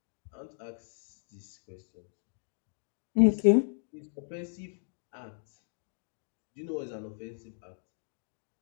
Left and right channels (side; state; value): right; silent; digital silence